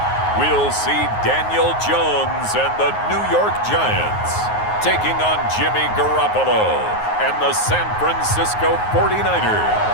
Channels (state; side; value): late; right; 9.5 ms